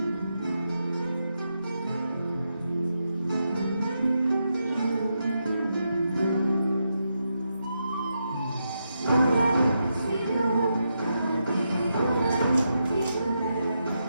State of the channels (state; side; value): inverted; both; correlation -0.84